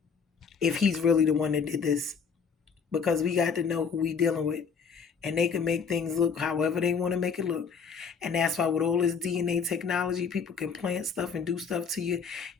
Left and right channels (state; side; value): quieter; right; 6.1 dB